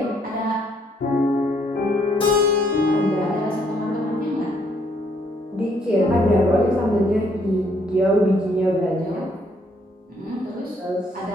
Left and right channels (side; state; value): both; normal; correlation 0.69